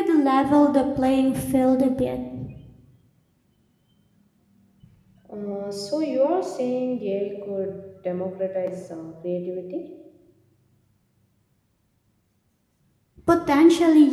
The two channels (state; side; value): identical; both; correlation 1.00